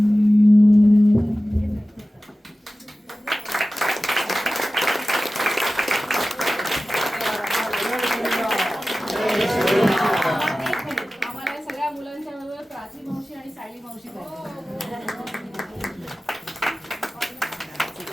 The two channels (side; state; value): both; normal; correlation 0.96